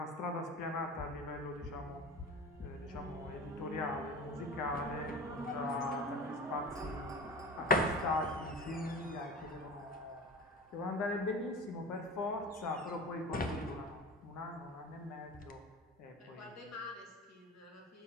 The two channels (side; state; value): both; normal; correlation 0.33